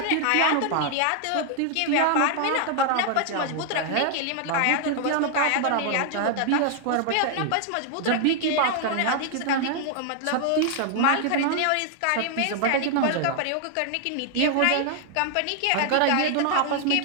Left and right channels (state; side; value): different; both; correlation 0.00